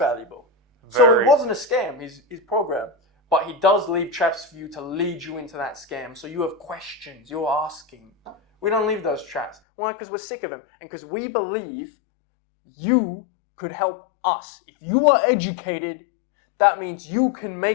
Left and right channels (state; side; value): drops out; right; at 9.6 s